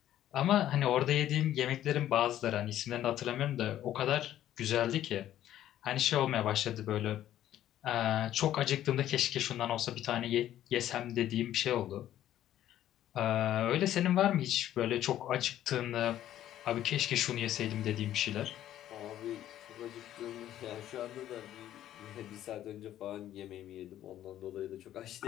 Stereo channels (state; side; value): quieter; right; 12.3 dB